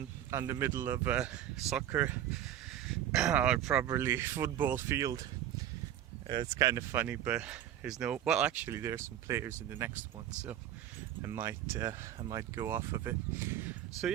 the middle of a soccer or probably football field. It's kind of funny, but there's no. Well, actually, there's some players in the next one, so I might go off of it. So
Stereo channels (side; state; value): left; quieter; 11.3 dB